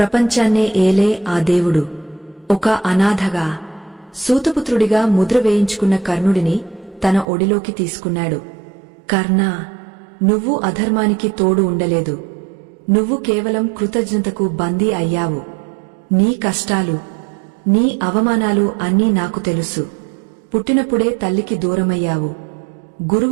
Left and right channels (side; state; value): left; drops out; at 7.2 s